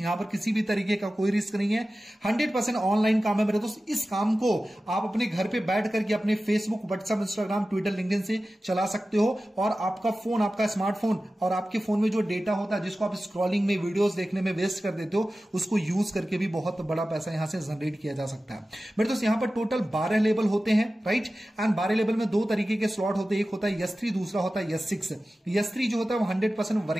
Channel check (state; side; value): normal; both; correlation 0.95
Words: पर किसी भी तरीके का कोई रिस्क नहीं है। 100% ऑनलाइन काम है मेरे दोस्त। इस काम को आप अपने घर पे बैठ करके अपने Facebook, WhatsApp, Instagram, Twitter, LinkedIn से चला सकते हो। और आपका फोन, आपका स्मार्टफोन और आपके फोन में जो डेटा होता है जिसको आप स्क्रॉलिंग में, वीडियोस देखने में वेस्ट कर देते हो, उसको यूज करके भी बहुत बड़ा पैसा यहां से जनरेट किया जा सकता है मेरे दोस्त। यहां पर टोटल 12 लेवल होते हैं, राइट। एंड 12 लेवल में 2 तरीके के स्लॉट होते हैं। एक होता है S3, दूसरा होता है S6। S3 जो होता है वो 100%